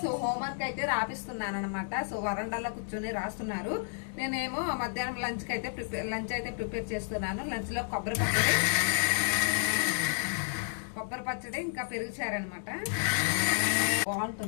సో హోంవర్క్ అయితే రాపిస్తున్నాను అనమాట. సో వరండాలో కూర్చొని రాస్తున్నారు. నేనేమో మధ్యాహ్నం లంచ్ అయితే ప్రిపేర్ చేస్తున్నాను. లంచ్ లో కొబ్బరి పచ్చడి ఇంకా పెరుగుచారనమాట.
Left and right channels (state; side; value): silent; right; digital silence